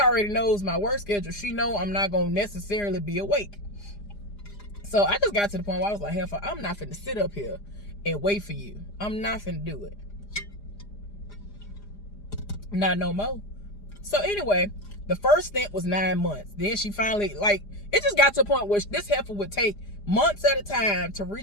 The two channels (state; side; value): late; right; 4.9 ms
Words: knows my work schedule. She know I'm not going to necessarily be awake. So I just got to the point where I was like, hell, I'm not finna sit up here and wait for you. I'm not finna do it. Not no more. So anyway, the first stint was 9 months. Then she finally, like, it just got to a point where this heifer would take months at a time to